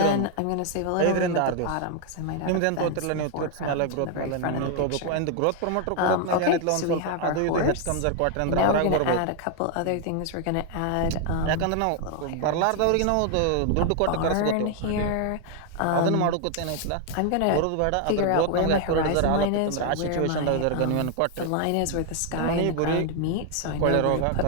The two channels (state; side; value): different; both; correlation 0.00